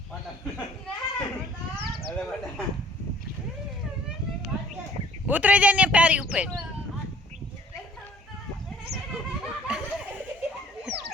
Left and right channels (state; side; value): normal; both; correlation 0.54